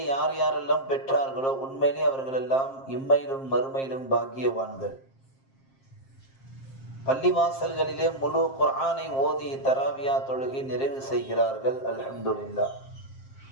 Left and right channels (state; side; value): late; right; 7.5 ms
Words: யார் யாரெல்லாம் பெற்றார்களோ உண்மையிலே அவர்கள் எல்லாம் இம்மையிலும் மறுமையிலும் பாக்கியவான்கள். பள்ளிவாசல்களிலே முழு குர்ஆனை ஓதி தராவியா தொழுகை நிறைவு செய்கிறார்கள். அல்ஹம்துலில்லாஹ்.